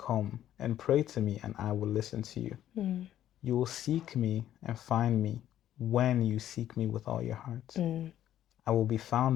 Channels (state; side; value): quieter; right; 11.8 dB